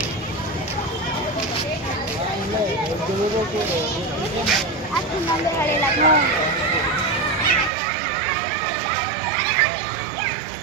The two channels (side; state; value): left; drops out; at 7.7 s